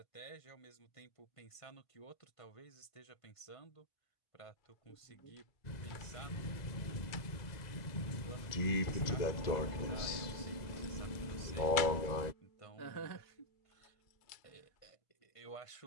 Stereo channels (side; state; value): right; late; 2.0 ms